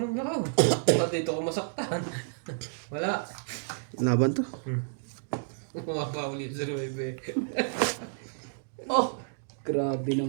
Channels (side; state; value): left; silent; digital silence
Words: ng lakaw. Ba't dito ko masaktan? Wala. Laban to. Kumapa ulit sa Nueve. Oh! Grabe